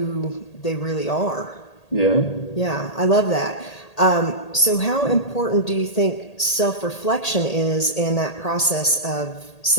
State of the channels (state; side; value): late; right; 1.8 ms